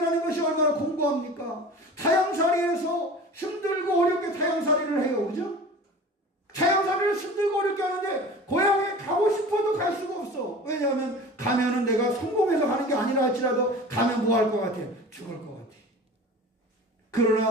것이 얼마나 공고합니까? 타향살이에서 힘들고 어렵게 타향살이를 해요. 그죠? 타향살이를 힘들고 어렵게 하는데 고향에 가고 싶어도 갈 수가 없어. 왜냐하면 가면은 내가 성공해서 가는 게 아니라 할지라도 가면 뭐 할 것 같아? 죽을 것 같아.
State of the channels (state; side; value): normal; both; correlation 0.38